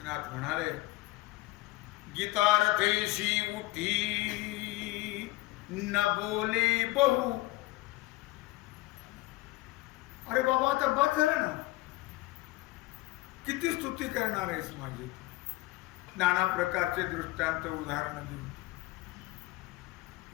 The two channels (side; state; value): right; quieter; 19.7 dB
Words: म्हणाले, गीतार्थेशी उठी न बोले बहु. अरे बाबा, आता बस झालं ना, किती स्तुती करणार आहेस माझी? नाना प्रकारचे दृष्टांत उदाहरण देऊन